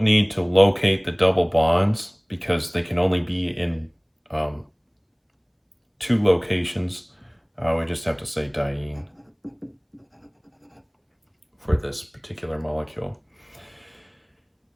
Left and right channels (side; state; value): both; identical; correlation 1.00